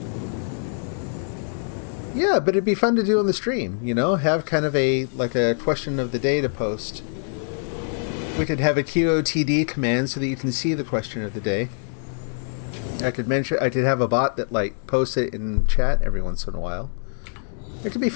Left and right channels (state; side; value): silent; right; digital silence